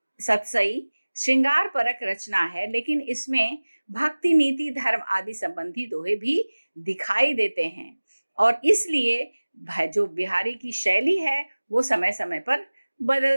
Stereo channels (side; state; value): both; inverted; correlation -1.00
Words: सतसई श्रृंगार परक रचना है, लेकिन इसमें भक्ति, नीति, धर्म आदि संबंधी दोहे भी दिखाई देते हैं और इसलिए जो बिहारी की शैली है वो समय समय पर